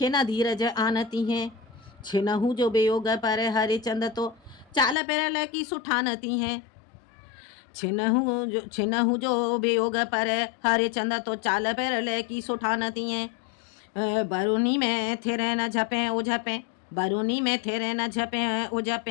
न धीरज आनती हैं। छिनहु जो वियोग पर हरिचंद तो चाल पेरल की सुठानती हैं। छिनहु जो वियोग पर हरिचंद तो चाल पेरल की सुठानती हैं। बरूनी में थिरे न झपे ओ झपे, बरूनी में थिरे न झपे ओ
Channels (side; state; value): right; drops out; at 5.0 s